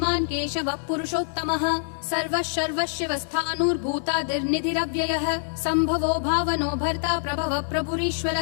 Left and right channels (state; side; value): silent; right; 59 dB below the other